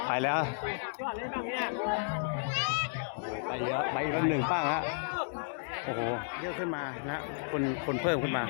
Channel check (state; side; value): silent; right; digital silence